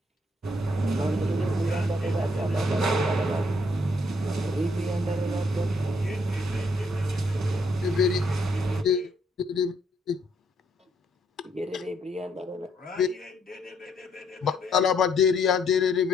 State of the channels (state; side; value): normal; both; correlation 0.70